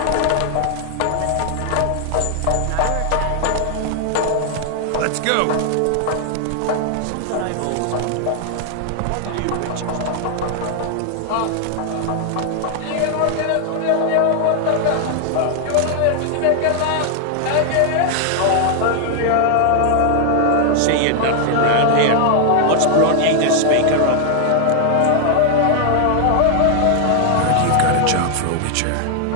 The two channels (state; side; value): different; both; correlation 0.00